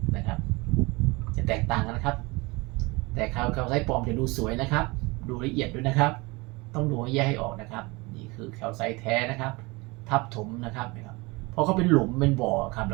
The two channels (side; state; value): left; quieter; 24.9 dB